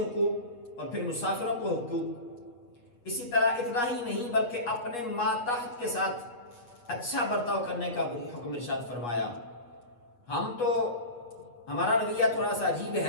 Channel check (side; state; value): right; late; 8.3 ms